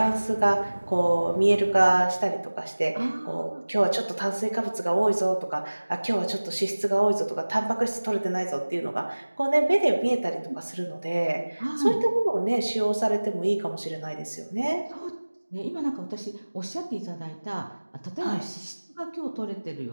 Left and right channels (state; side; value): inverted; both; correlation -1.00